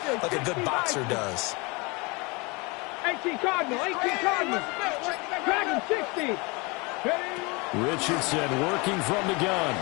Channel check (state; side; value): quieter; right; 27.6 dB